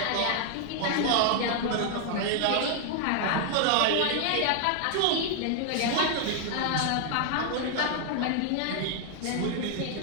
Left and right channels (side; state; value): both; different; correlation 0.00